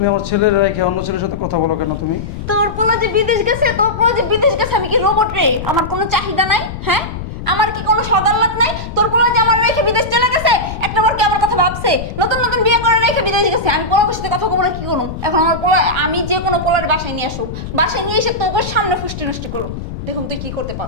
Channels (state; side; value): noise; left; rumble, 9 dB below the sound